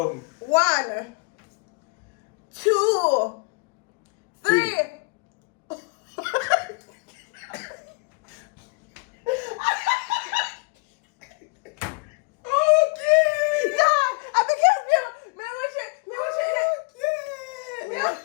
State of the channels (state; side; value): quieter; right; 31.6 dB